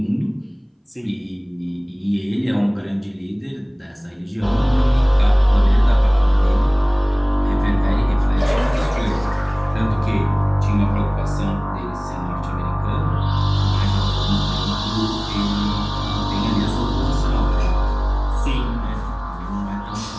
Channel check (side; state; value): both; identical; correlation 1.00